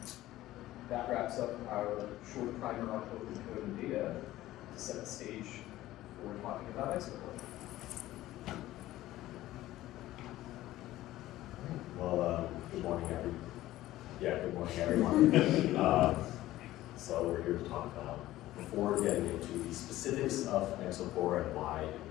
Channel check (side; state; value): right; quieter; 15.5 dB